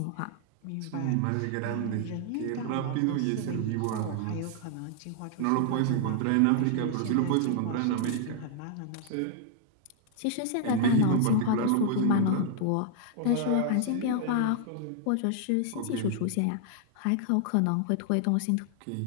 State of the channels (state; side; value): different; both; correlation -0.01